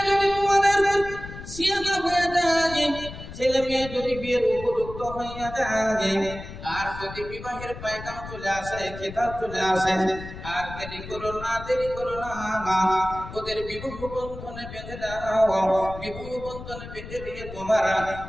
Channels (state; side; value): noise; left; rumble, 12 dB below the sound